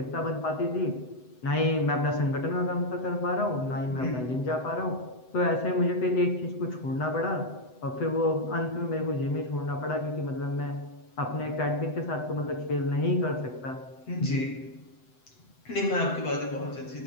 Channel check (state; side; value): late; right; 7.9 ms